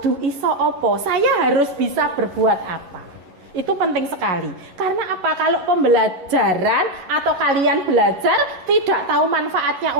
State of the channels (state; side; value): late; left; 11 ms